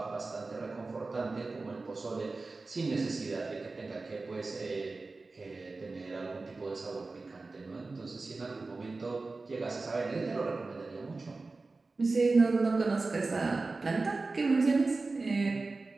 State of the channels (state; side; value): quieter; left; 3.6 dB